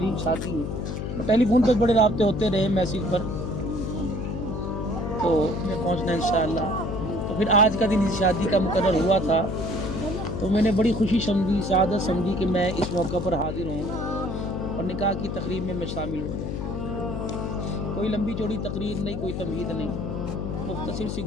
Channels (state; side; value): noise; left; hum, 4 dB below the sound